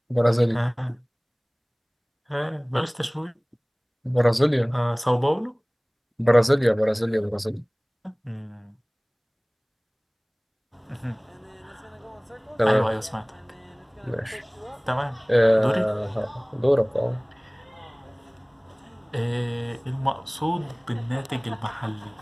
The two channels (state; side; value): identical; both; correlation 1.00